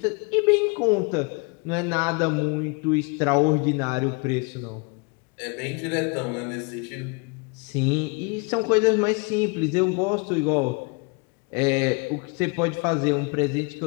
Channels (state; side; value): quieter; right; 31.3 dB